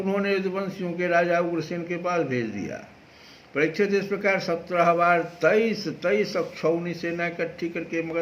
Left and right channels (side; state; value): both; identical; correlation 1.00